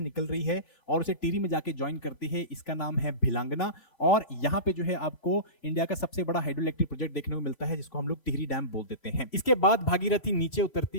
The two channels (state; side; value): late; right; 3.1 ms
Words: रही है और उसे टिहरी में जाके ज्वाइन करती है। इसका नाम है भिलांगना और यहाँ पे जो है आपको इंडिया का सबसे बड़ा हाइड्रो इलेक्ट्रिक प्रोजेक्ट देखने को मिलता है जिसको हम लोग टिहरी डैम बोल देते हैं। इसके बाद भागीरथी नीचे